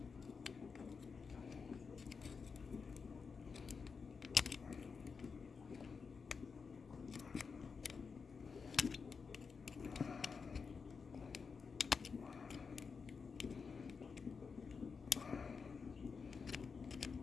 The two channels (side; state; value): right; quieter; 5.3 dB